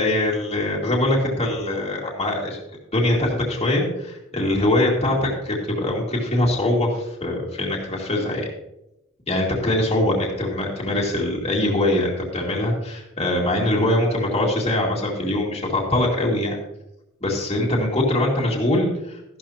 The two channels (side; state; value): both; normal; correlation 0.42